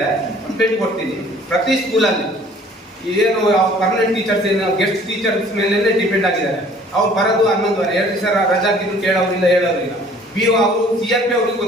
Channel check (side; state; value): both; normal; correlation 0.53